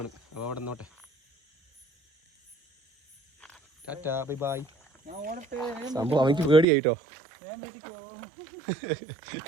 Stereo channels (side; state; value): left; drops out; at 6.7 s